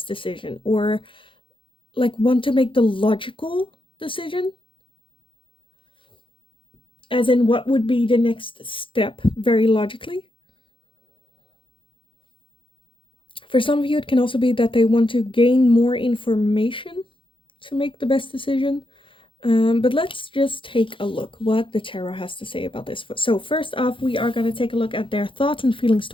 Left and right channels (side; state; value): right; late; 0.25 ms